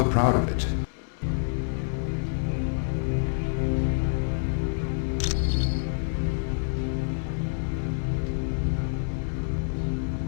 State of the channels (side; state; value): right; silent; digital silence